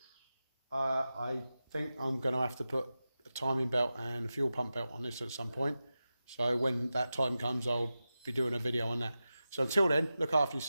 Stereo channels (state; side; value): inverted; both; correlation -0.93